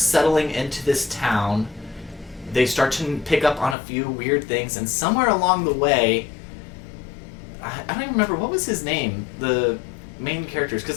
into this town, they start to pick up on a few weird things, and somewhere along the way, I don't even remember what was his name, the main characters,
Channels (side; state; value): right; drops out; at 3.8 s